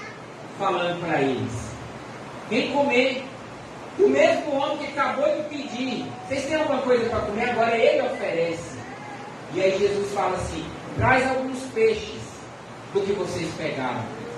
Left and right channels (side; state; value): both; identical; correlation 1.00